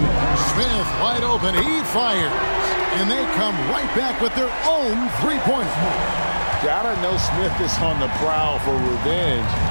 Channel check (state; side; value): inverted; both; correlation -1.00